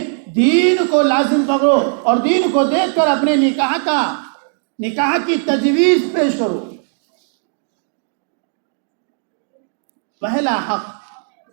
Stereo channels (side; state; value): left; silent; digital silence